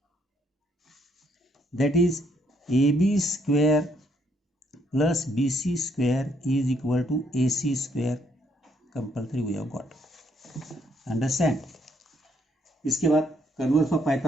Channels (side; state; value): both; normal; correlation 0.70